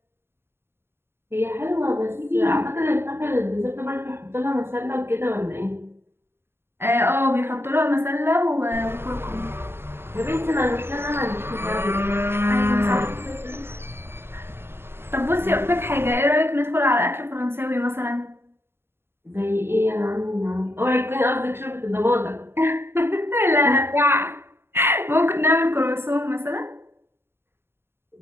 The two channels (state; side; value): late; left; 0.11 ms